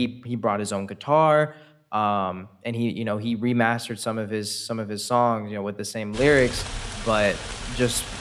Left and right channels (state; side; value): identical; both; correlation 1.00